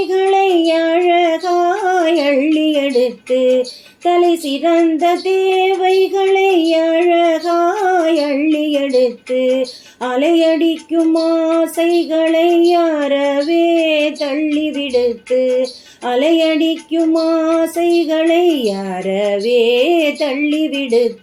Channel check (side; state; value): both; identical; correlation 1.00